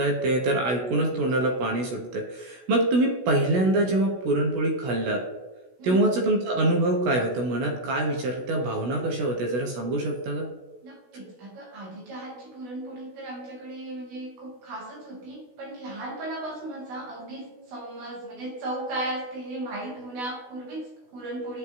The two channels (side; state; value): left; late; 16 ms